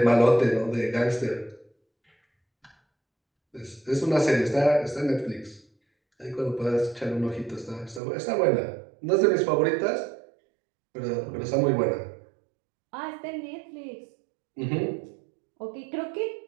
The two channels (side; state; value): left; drops out; at 8.0 s